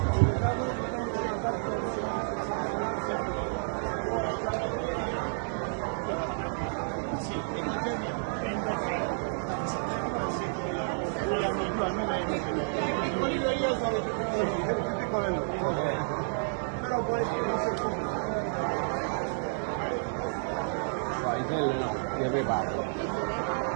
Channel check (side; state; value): left; silent; digital silence